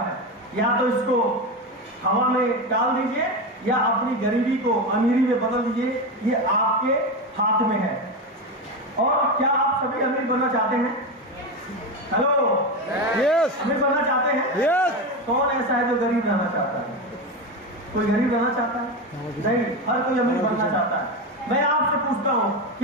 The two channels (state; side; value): normal; both; correlation 0.17